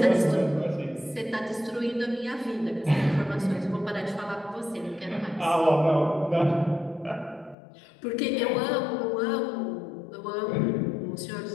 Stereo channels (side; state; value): right; drops out; at 7.6 s